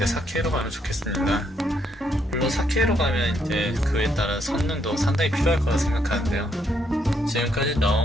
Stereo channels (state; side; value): normal; both; correlation 0.74